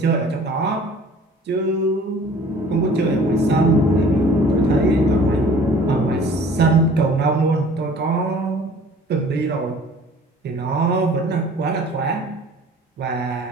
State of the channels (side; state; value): both; normal; correlation 0.49